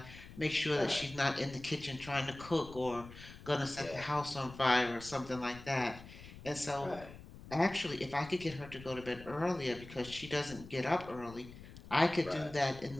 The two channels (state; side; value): noise; left; rumble, 16 dB below the sound